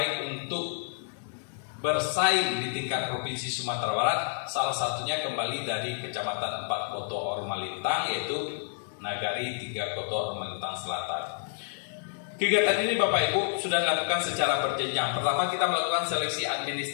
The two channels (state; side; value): silent; right; digital silence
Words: untuk bersaing di tingkat provinsi Sumatera Barat. Salah satunya kembali dari Kecamatan 4 Koto Ormalintang, yaitu nagari 3 Koto Ormalintang Selatan. Kegiatan ini Bapak Ibu sudah dilakukan secara berjenjang. Pertama kita melakukan seleksi